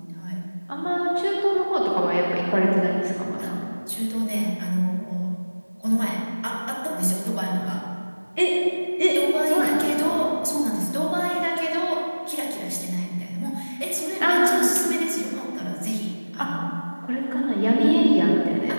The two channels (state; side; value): inverted; both; correlation -1.00